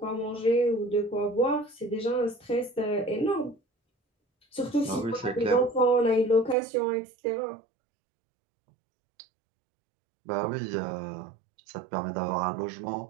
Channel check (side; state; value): left; drops out; at 6.6 s